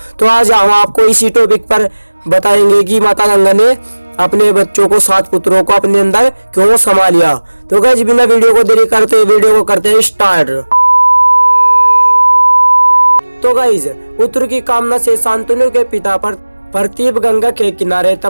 तो आज हम आपको इसी टॉपिक पर बताएंगे कि माता गंगा ने अपने बच्चों को 7 पुत्रों को अपने अंदर क्यों समा लिया। तो गाइस बिना वीडियो को देरी करते वीडियो को करते हैं स्टार्ट। तो गाइस पुत्र की कामना से शांतनु के पिता पर प्रतीप गंगा के किनारे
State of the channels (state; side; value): inverted; both; correlation -1.00